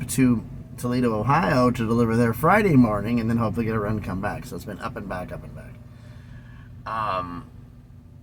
to Toledo, Ohio to deliver there Friday morning and then hopefully get a run and come back. So it's been up and back, up and back.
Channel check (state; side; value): identical; both; correlation 1.00